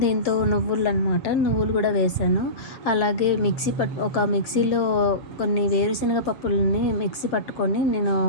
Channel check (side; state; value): right; late; 7.6 ms